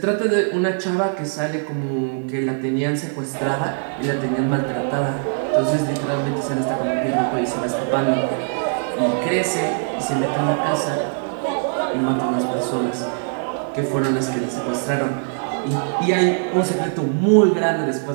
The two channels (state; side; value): silent; left; 65 dB below the other